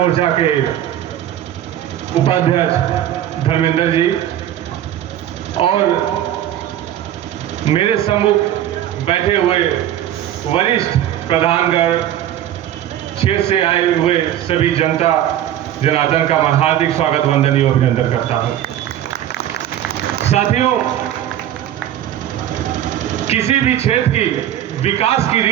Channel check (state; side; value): quieter; left; 11.6 dB